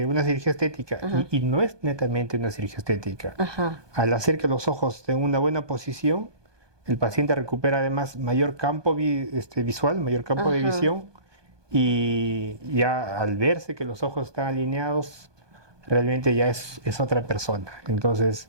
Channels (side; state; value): left; late; 1.2 ms